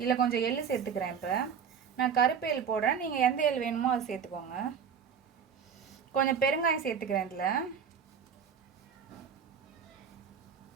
இதில் கொஞ்சம் எள்ளு சேர்த்துக்கிறேன். இப்போ நான் கருப்பு எள் போடுறேன், நீங்கள் எந்த எள் வேணுமோ அதை சேர்த்துக்கோங்க. கொஞ்சம் பெருங்காயம் சேர்த்துக்கிறேன். இதில்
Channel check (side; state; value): left; quieter; 7.1 dB